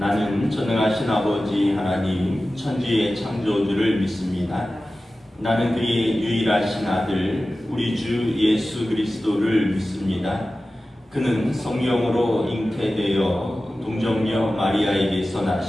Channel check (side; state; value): both; normal; correlation 0.95